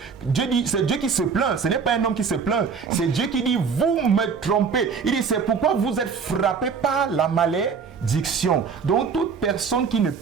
Dieu dit, c'est Dieu qui se plaint, ce n'est pas un homme qui se plaint, c'est Dieu qui dit, vous me trompez. Il dit, c'est pourquoi vous êtes frappés par la malédiction. Donc toute personne qui ne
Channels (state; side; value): quieter; left; 5.8 dB